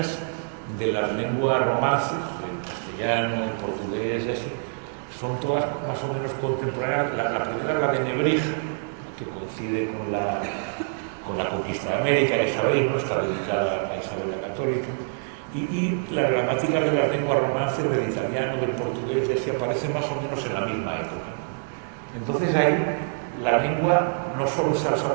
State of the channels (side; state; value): left; silent; 61 dB below the other